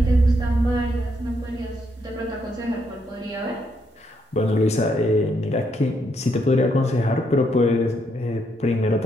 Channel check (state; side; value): normal; both; correlation 0.76